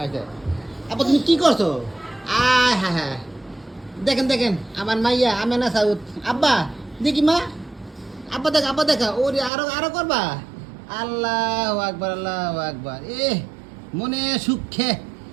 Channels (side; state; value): left; drops out; at 9.5 s